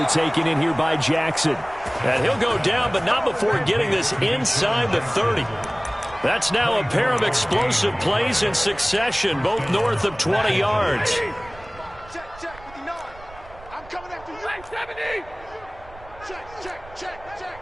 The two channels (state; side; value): noise; right; rumble, 20 dB below the sound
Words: taken in here by Jackson. And he'll go down, but not before getting this inside the 30. That's now a pair of explosive plays in succession, both north of 20 yards. Check, 59. I'm coming after you. 70. Check.